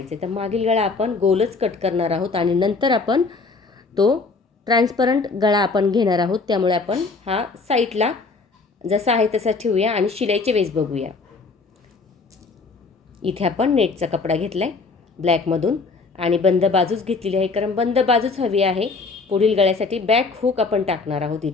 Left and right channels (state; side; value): quieter; right; 4.1 dB